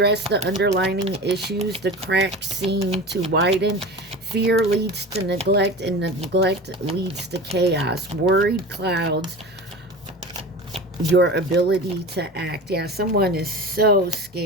the underlying issues. The cracks seem to widen. Fear leads to neglect, and neglect leads to chaos. Worried clouds your ability to act. Yeah, someone is so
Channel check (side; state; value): both; normal; correlation 0.32